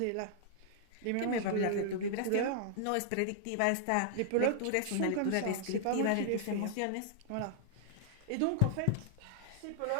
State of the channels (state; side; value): different; both; correlation -0.01